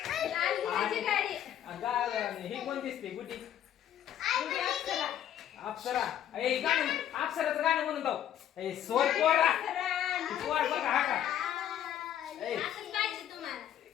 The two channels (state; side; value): quieter; right; 10.7 dB